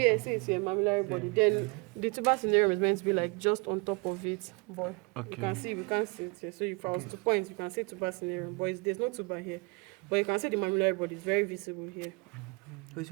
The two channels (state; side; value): quieter; left; 30.2 dB